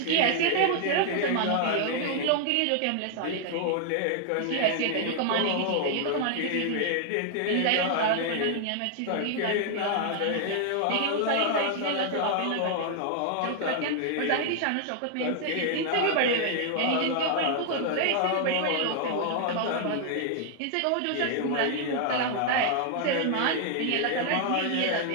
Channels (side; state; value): both; different; correlation 0.00